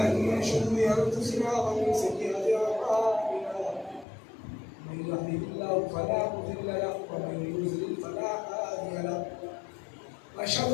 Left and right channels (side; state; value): right; drops out; at 4.0 s